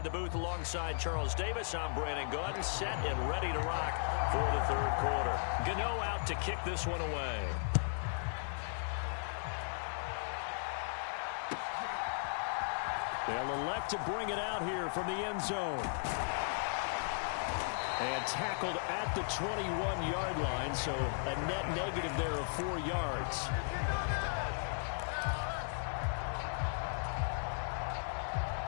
the booth alongside Charles Davis. I'm Brandon Gaudin, set and ready to rock for the 3rd quarter. Gano out to kick this one away. They'll elect to bring it out here from the end zone. And tackled at the 21-yard line, so a net negative there of 4 yards.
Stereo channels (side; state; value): right; silent; digital silence